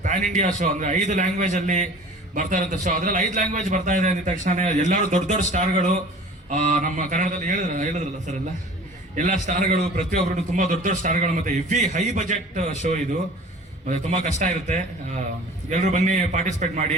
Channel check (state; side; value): normal; both; correlation 0.44